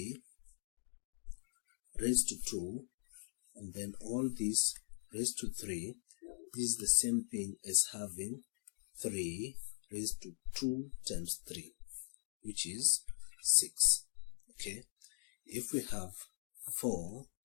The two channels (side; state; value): right; silent; digital silence